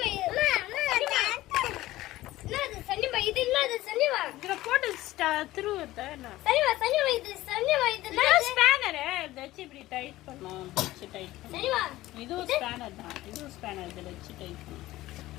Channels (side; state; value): right; quieter; 16.6 dB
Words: என்னது சரிமா இது என்னது சரிமா இதுல போட்டு திருவுறதா என்ன சரிமா சரிமா இது ஸ்பேனர் இத வச்சு இப்படி டைட் பண்ணோம் வச்சு டைட் பண்ணோம் சரிமா இதுவும் ஸ்பேனர் தான் இதுவும் ஸ்பேனர் இதில் வச்சு டைட் பண்ணோம்